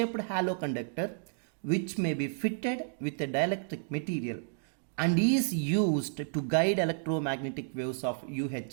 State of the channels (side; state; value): left; silent; digital silence